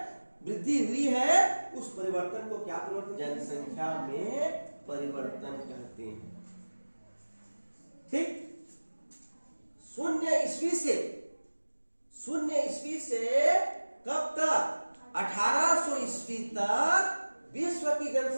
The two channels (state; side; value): inverted; both; correlation -1.00